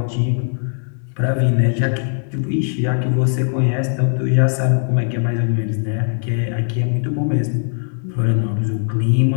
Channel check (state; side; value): silent; right; 60 dB below the other